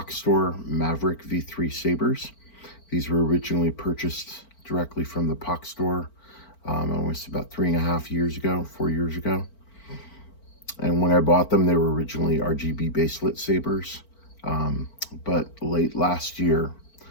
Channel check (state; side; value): late; right; 4.4 ms